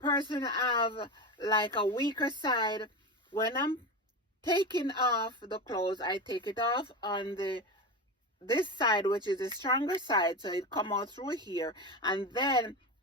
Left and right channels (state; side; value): normal; both; correlation 0.22